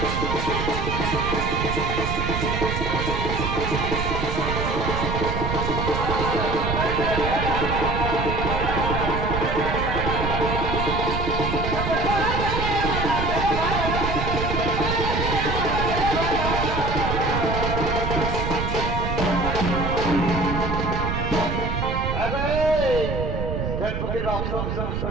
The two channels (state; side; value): noise; right; rumble, 2 dB below the sound